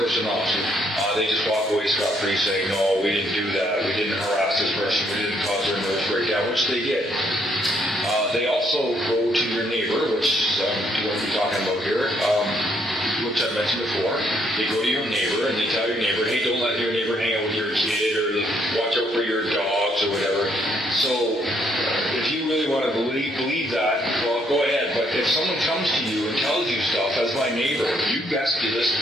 off. They just walk away scot-free saying, no, we didn't do that, we didn't harass this person, we didn't cause their nervous breakdown, which they did. They also go to your neighbor, which I'm going to be talking about here, which I mentioned before. They go to your neighbor and they tell your neighbor, hey, don't let your neighbor hang out with your kid, or watch out for your dogs or whatever. So if you really want to believe that, well, go ahead. But if someone comes to you and tells you stuff as my neighbor, you best be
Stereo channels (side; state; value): both; normal; correlation 0.70